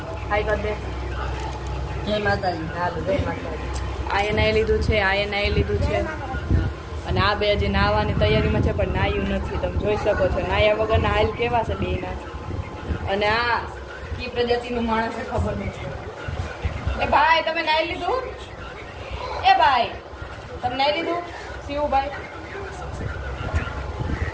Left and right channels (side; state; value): both; identical; correlation 1.00